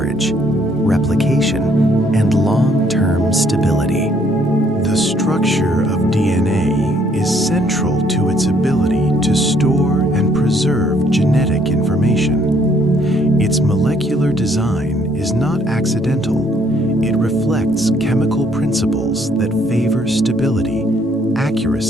replication, and long-term stability. The structure of DNA is central to its ability to store and preserve genetic information. Its molecular design is not accidental. It reflects chemical principles that favor stability,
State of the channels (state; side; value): normal; both; correlation 0.66